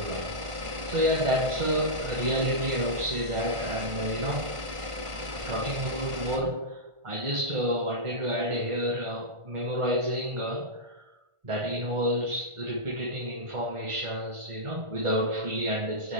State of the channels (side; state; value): left; late; 1.5 ms